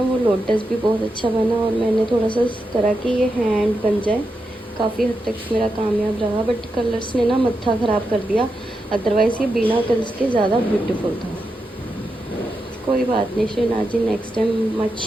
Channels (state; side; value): normal; both; correlation 0.87